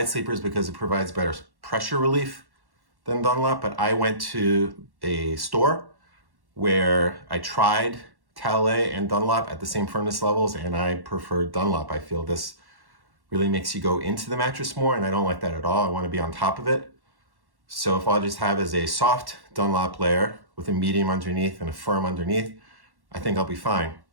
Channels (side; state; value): left; late; 1.1 ms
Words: sleepers because it provides better pressure relief than Dunlop, but I went to a store where I tried Talalay and Dunlop at the same firmness levels, and I preferred Dunlop. I feel this really makes you go into the mattress more, and I don't like that at all. I want to be on top of it. So if all I just have is a soft Dunlop layer with a medium underneath and a firm underneath, I think I'll be fine.